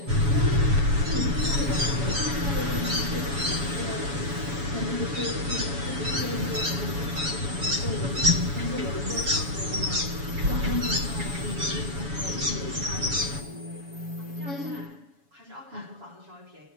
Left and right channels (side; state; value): left; late; 7.1 ms